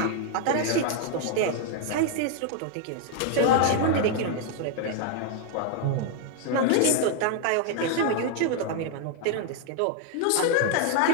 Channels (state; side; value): different; both; correlation 0.00